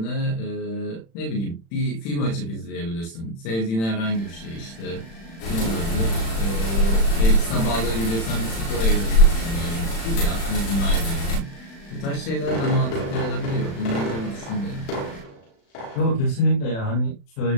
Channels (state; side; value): late; right; 36 ms